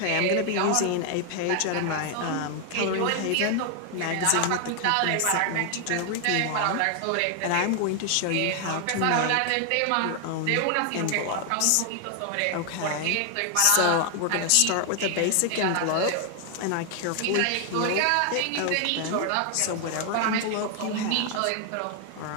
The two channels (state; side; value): different; both; correlation 0.00